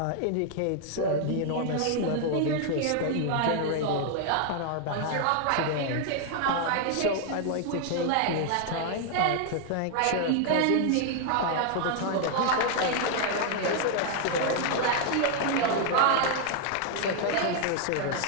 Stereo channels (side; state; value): both; different; correlation 0.00